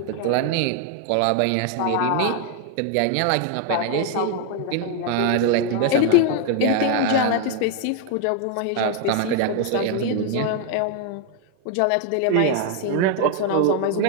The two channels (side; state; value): both; different; correlation 0.01